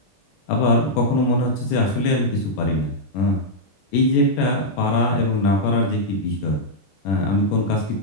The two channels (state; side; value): late; right; 21 ms